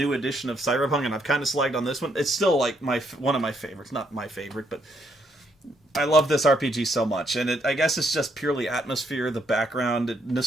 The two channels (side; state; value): both; normal; correlation 0.74